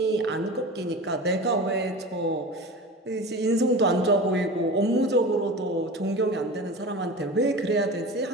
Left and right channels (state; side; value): normal; both; correlation 0.32